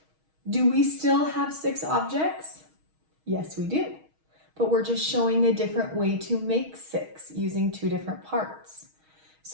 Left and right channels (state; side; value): late; left; 6.3 ms